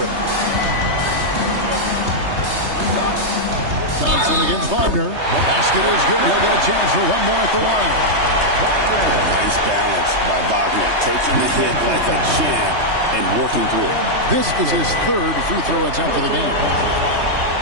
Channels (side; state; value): left; late; 3.2 ms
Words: Thompson against Wagner. The basket is good. He'll get a chance for one more at the line. Nice balance by Wagner, taking the hit like a champ and working through it. This is his third free throw attempt of the game.